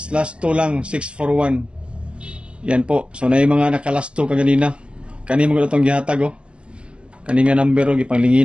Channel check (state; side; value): late; left; 0.053 ms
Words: last 2 lang, 641. Yan po. So na yung mga nakalasto kaganina. Kani mo itong gihatag oh. Kani nga number oh,